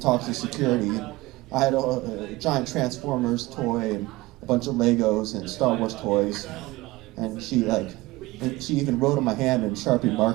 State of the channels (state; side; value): quieter; left; 20.3 dB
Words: to security. I had a giant Transformers toy and a bunch of Legos and Star Wars toys, and she even wrote on my hand in Sharpie